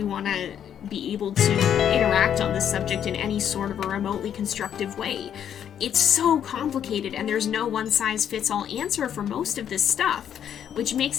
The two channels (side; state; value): right; quieter; 9.3 dB